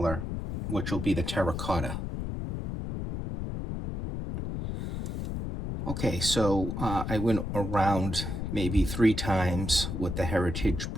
which will be the terracotta. Okay, so I went around maybe 3 times with the heritage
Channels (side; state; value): left; noise; rumble, 4 dB below the sound